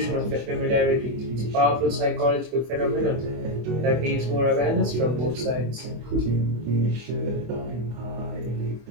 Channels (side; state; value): left; late; 24 ms